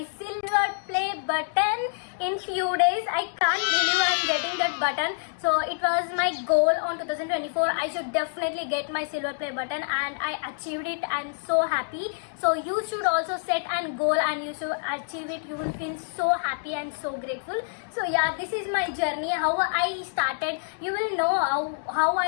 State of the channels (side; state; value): right; silent; digital silence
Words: silver play button in few days. I can't believe I'm getting that button. So it was my goal on 2024. I should definitely get my silver play button, and I achieved it. I'm so happy. So you should also set a goal and you should achieve it. You will feel so happy and so grateful. So yeah, this is my journey, how I started. You will know how